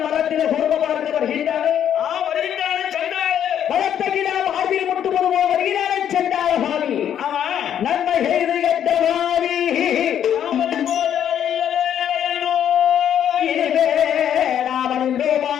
மரத்தில குடும்ப பார்க்க வருகின்றானே வருகின்றானே சண்டாள மரத்தகிடா மார்பில் முட்டுவது போல் வருகிறானே சண்டாள பாவி ஆமா நன்மை செய்து கெட்ட பாவி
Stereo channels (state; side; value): quieter; right; 9.6 dB